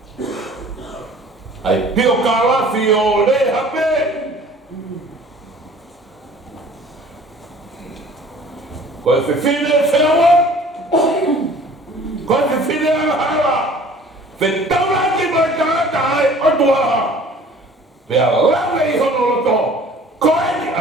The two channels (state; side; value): normal; both; correlation 0.49